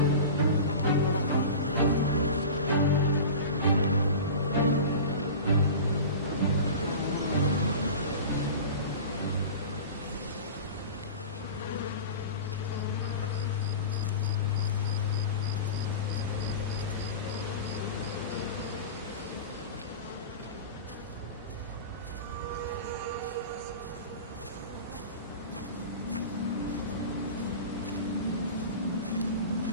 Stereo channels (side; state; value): both; inverted; correlation -0.33